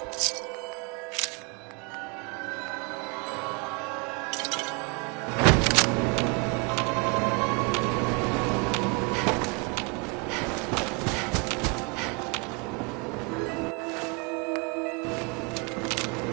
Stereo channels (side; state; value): left; quieter; 32.2 dB